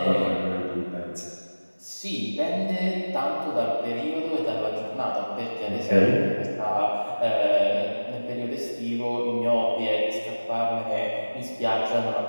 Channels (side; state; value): both; inverted; correlation -1.00